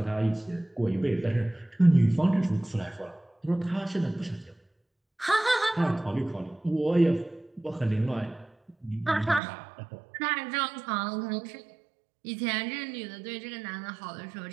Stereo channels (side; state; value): left; drops out; at 9.4 s